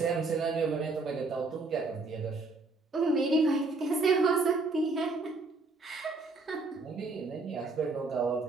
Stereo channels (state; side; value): quieter; left; 3.6 dB